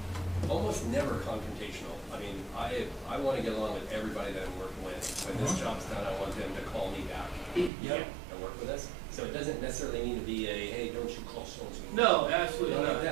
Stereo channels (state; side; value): drops out; left; at 7.7 s